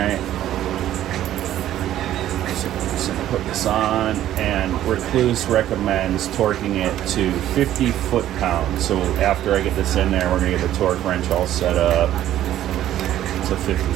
So we're just gonna put this on, and Rekluse recommends torquing it to 50 foot-pounds. So after I get this in there, we're gonna get the torque wrench all set up to 50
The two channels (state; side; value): quieter; left; 12.5 dB